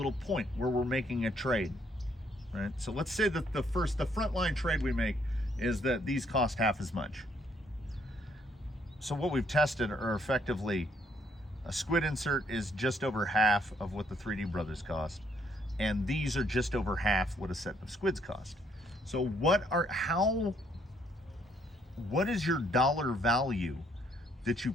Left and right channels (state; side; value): normal; both; correlation 0.69